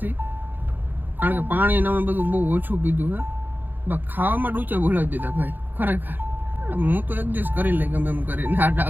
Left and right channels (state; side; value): late; left; 0.089 ms